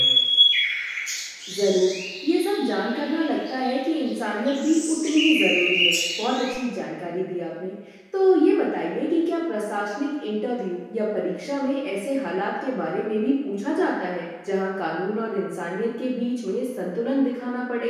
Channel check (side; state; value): both; identical; correlation 1.00